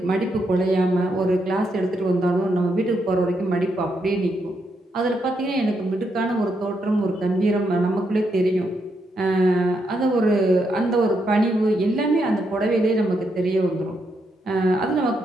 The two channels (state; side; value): normal; both; correlation 0.79